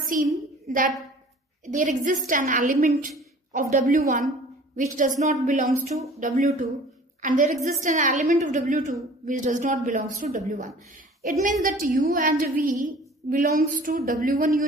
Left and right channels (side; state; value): both; normal; correlation 0.47